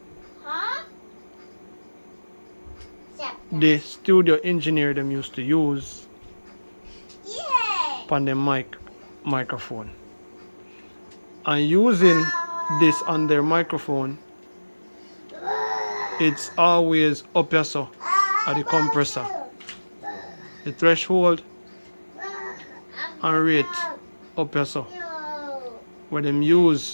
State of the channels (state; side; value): inverted; both; correlation -1.00